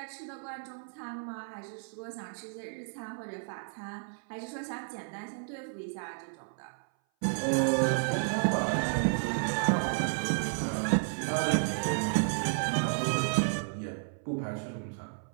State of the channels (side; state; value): left; silent; 56 dB below the other